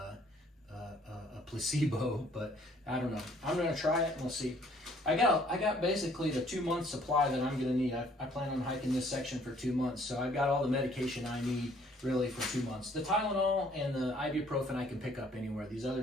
placebo, but I don't know. I'm gonna try it and we'll see. I got basically the 2-month supply that I'm gonna need. I plan on hiking this section for 2 months, so I've got all the medication I need really for 2 months. The Tylenol and the ibuprofen I can pick up anywhere. These other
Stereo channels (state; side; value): normal; both; correlation 0.60